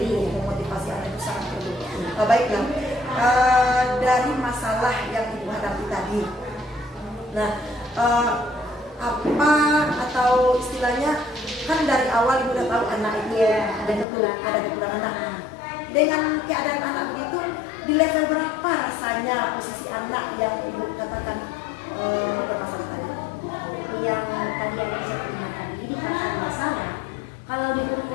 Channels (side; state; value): right; drops out; at 14.1 s